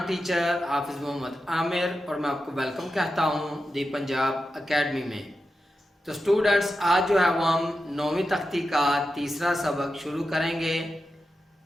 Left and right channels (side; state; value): both; normal; correlation 0.90